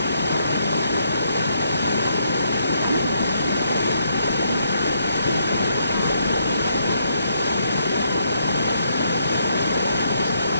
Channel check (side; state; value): both; inverted; correlation -0.74